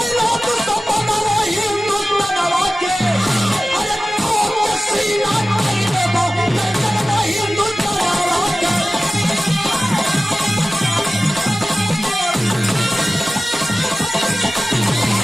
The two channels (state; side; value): normal; both; correlation 0.96